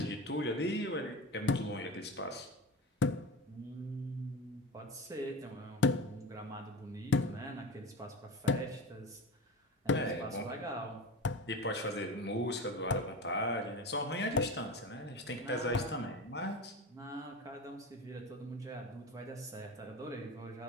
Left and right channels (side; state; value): both; normal; correlation 0.29